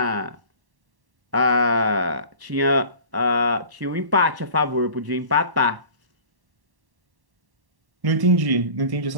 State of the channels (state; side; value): late; left; 1.1 ms